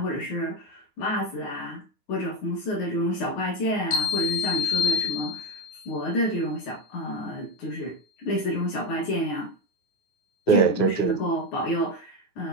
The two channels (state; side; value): late; right; 9.5 ms